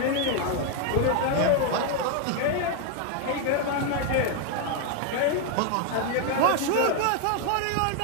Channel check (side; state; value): both; different; correlation 0.01